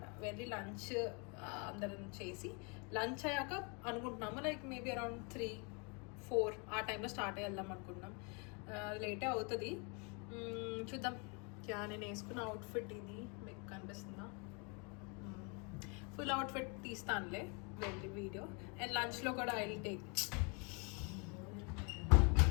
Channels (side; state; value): right; quieter; 33.5 dB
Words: వెళ్ళి లంచ్ అందరం చేసి లంచ్ అయ్యాక అనుకుంటున్నాము లైక్ మేబీ అరౌండ్ 3-4 ఆ టైంలో స్టార్ట్ అయ్యి వెళ్దాం అనుకుంటున్నాం. లేటే అవుతుంది, చూద్దాం. నేను వేసుకున్న అవుట్ఫిట్ ఇది మీకు కనిపిస్తుందా? ఫుల్ అవుట్ఫిట్ తీస్తానులే వెళ్ళి వీడియో. అండ్ లంచ్లో కూడా I will take